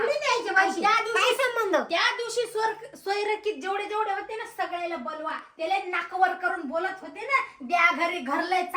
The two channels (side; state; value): both; identical; correlation 1.00